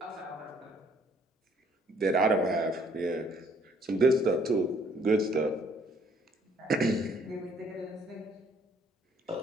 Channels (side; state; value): both; normal; correlation 0.63